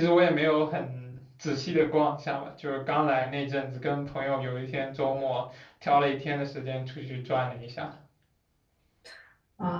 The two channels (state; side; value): identical; both; correlation 1.00